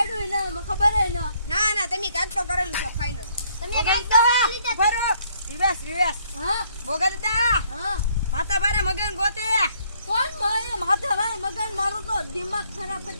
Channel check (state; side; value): inverted; both; correlation -0.67